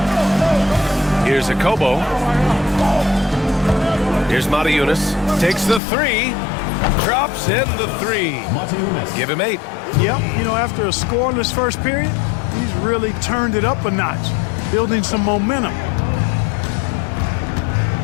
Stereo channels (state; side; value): drops out; right; at 5.8 s